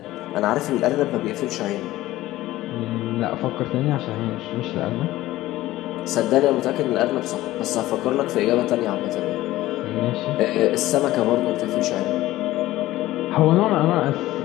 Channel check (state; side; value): quieter; right; 16.2 dB